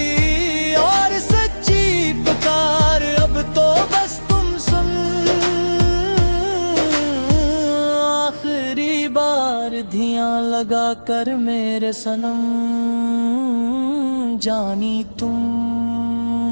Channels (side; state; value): both; inverted; correlation -1.00